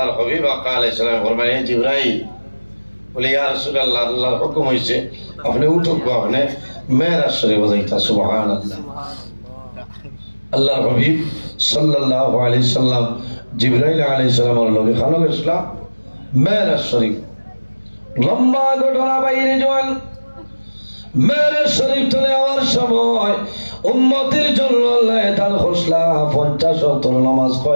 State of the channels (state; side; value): inverted; both; correlation -1.00